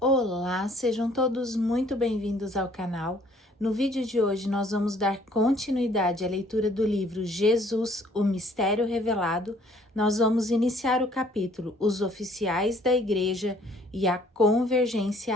Olá, sejam todos muito bem-vindos ao canal. No vídeo de hoje nós vamos dar continuidade à leitura do livro Jesus, o Mistério Revelado. Nós vamos iniciar o capítulo Os Oficiais da Igreja e a Convergência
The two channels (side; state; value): both; normal; correlation 0.60